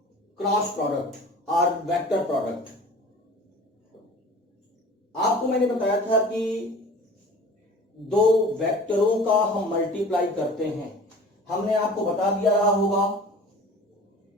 cross product or vector product. आपको मैंने बताया था कि दो वेक्टरों का हम मल्टीप्लाई करते हैं. हमने आपको बता दिया रहा होगा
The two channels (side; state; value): both; normal; correlation 0.42